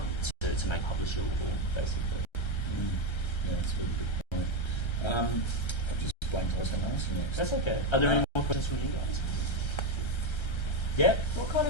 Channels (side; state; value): right; late; 1.3 ms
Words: to make publishable, basically. Yeah, that's a really good point. I've just blanked what I was going to ask you next. That's okay. Are there any more questions from you guys? Yeah? What kind